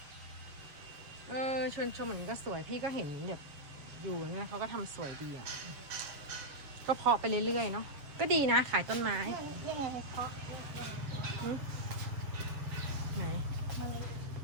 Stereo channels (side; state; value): left; late; 7.4 ms